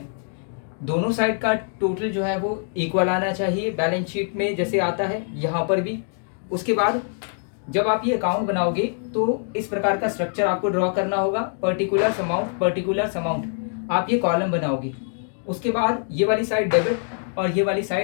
दोनों साइड का टोटल जो है वो इक्वल आना चाहिए बैलेंस शीट में, जैसे आता है यहाँ पर भी। उसके बाद जब आप ये अकाउंट बनाओगे तो इस प्रकार का स्ट्रक्चर आपको ड्रॉ करना होगा, पर्टिकुलर अमाउंट आप ये कॉलम बनाओगे। उसके बाद ये वाली साइड डेबिट और ये वाली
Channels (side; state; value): right; silent; 63 dB below the other